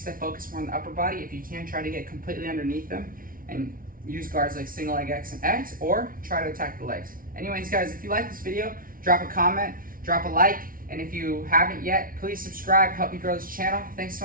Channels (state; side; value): late; left; 0.41 ms